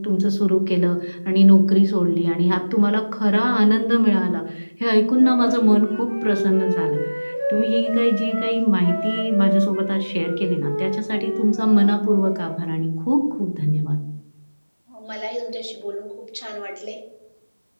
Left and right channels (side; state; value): both; inverted; correlation -1.00